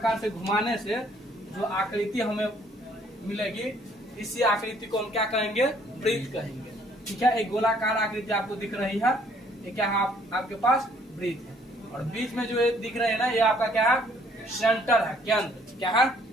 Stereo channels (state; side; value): normal; both; correlation 0.62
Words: से घुमाने से जो आकृति हमें मिलेगी, इसी आकृति को हम क्या कहेंगे? वृत्त कहेंगे। ठीक है, एक गोलाकार आकृति आपको दिख रही है, ये क्या है? आपके पास वृत्त है। और बीच में जो दिख रहे हैं ना, ये आपका क्या है? सेंटर है, केंद्र। क्या है?